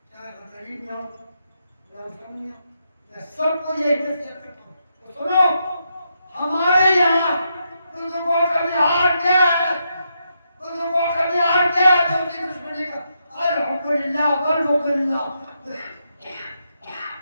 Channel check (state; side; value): inverted; both; correlation -0.81